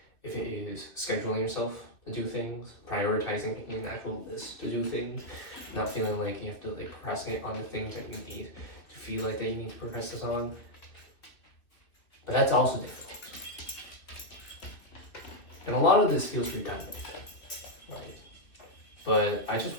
if it is scheduling yourself to do things, prioritizing an actual list to do things, not feeling like you have to like procrastinate on the things that you need to feel like that you need to procrastinate on. But that's also difficult. And a lot of this feels redundant, right? But I just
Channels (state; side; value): late; right; 2.6 ms